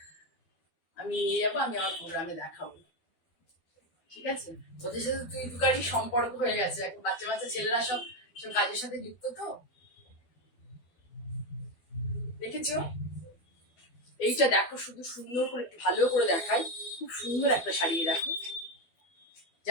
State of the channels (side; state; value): right; late; 12 ms